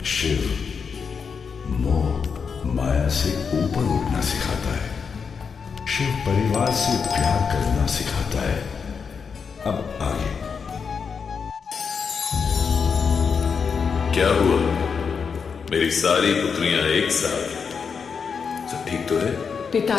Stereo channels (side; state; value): right; quieter; 5.9 dB